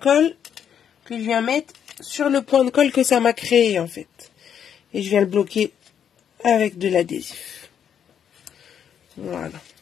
que je viens mettre sur le point de colle que ça m'a créé en fait. Et je viens le bloquer avec de l'adhésif. Voilà.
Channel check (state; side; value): quieter; right; 8.5 dB